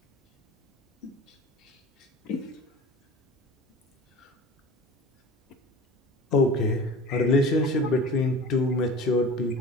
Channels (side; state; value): both; normal; correlation 0.39